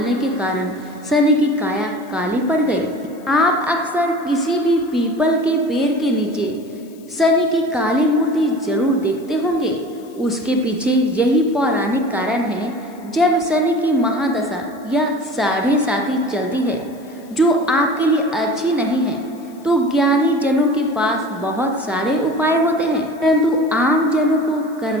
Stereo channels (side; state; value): left; noise; hiss, 28 dB below the sound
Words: के कारण शनि की काया काली पड़ गई। आप अक्सर किसी भी पीपल के पेड़ के नीचे शनि की काली मूर्ति जरूर देखते होंगे। उसके पीछे यही पौराणिक कारण है। जब शनि की महादशा या साढ़े साथी चलती है जो आपके लिए अच्छी नहीं है, तो ज्ञानी जनों के पास बहुत सारे उपाय होते हैं, परंतु आम जनों को